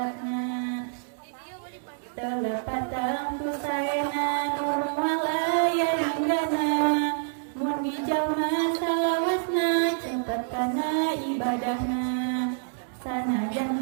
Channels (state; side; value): silent; left; 60 dB below the other